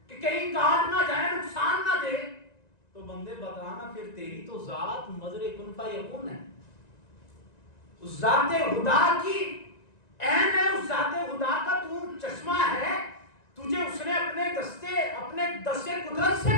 کہ کہیں کاٹ نہ جائے، نقصان نہ دے، تو بندے بتانا پھر تیری تو ذات مظہر کن فیکون ہے، اس ذات خدا کی عین ہے، اس ذات خدا کا تو چشمہ ہے، تجھے اس نے اپنے دستے قدرت سے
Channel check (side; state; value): right; late; 1.9 ms